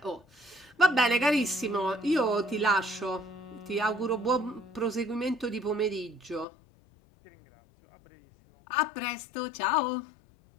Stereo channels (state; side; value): drops out; right; at 6.5 s